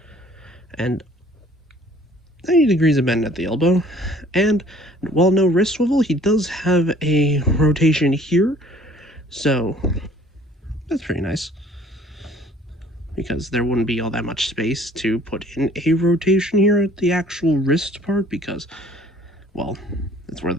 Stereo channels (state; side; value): normal; both; correlation 0.55